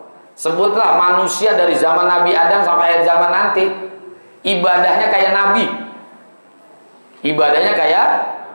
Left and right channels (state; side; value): inverted; both; correlation -1.00